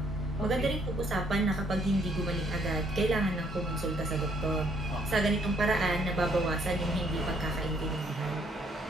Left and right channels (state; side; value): normal; both; correlation 0.67